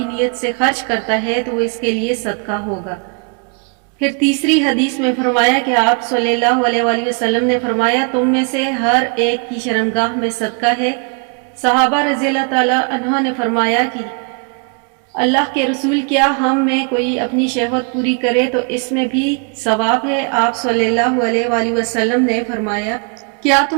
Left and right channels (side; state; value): left; quieter; 37.3 dB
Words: نیت سے خرچ کرتا ہے تو وہ اس کے لیے صدقہ ہوگا۔ پھر تیسری حدیث میں فرمایا کہ آپ صلی اللہ علیہ وآلہ وسلم نے فرمایا تم میں سے ہر ایک کی شرمگاہ میں صدقہ ہے۔ صحابہ رضی اللہ تعالیٰ عنہ نے فرمایا کہ اللہ کے رسول، کیا ہم میں کوئی اپنی شہوت پوری کرے تو اس میں بھی ثواب ہے؟ آپ صلی اللہ علیہ وآلہ وسلم نے فرمایا کیا